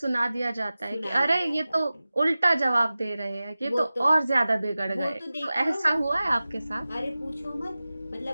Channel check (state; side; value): inverted; both; correlation -0.96